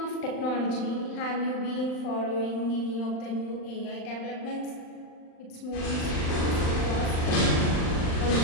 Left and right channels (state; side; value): late; right; 39 ms